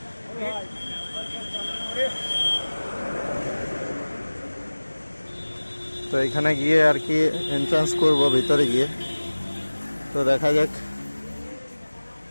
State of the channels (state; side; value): inverted; both; correlation -1.00